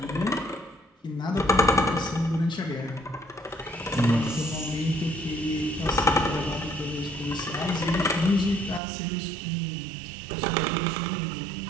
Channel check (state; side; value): drops out; left; at 8.8 s